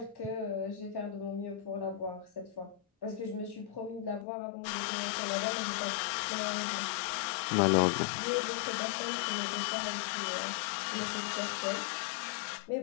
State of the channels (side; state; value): right; drops out; at 4.2 s